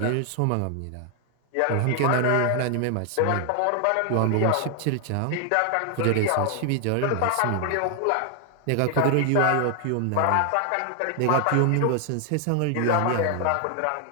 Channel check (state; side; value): different; both; correlation 0.00